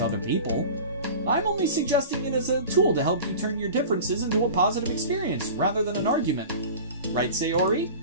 other people. I'm only suggesting it as a tool to help you turn your differences into a positive experience, rather than an argument. Right, Sayori?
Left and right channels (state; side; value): inverted; both; correlation -0.36